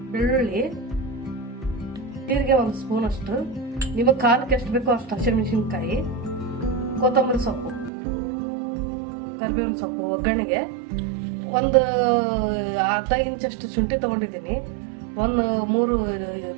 ಬೆಳ್ಳುಳ್ಳಿ, ಜೀರಿಗೆ 1 ಸ್ಪೂನ್ ಅಷ್ಟು, ನಿಮಗೆ ಖಾರಕ್ಕೆ ಎಷ್ಟು ಬೇಕೋ ಅಷ್ಟು ಹಸಿಮೆಣಸಿನ್ಕಾಯಿ, ಕೊತ್ತಂಬರಿ ಸೊಪ್ಪು, ಕರಿಬೇವಿನ ಸೊಪ್ಪು, ಒಗ್ಗರಣೆಗೆ ಒಂದು ಅರ್ಧ ಇಂಚಷ್ಟು ಶುಂಠಿ ತೊಗೊಂಡಿದ್ದೀನಿ, 3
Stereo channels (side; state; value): left; drops out; at 7.9 s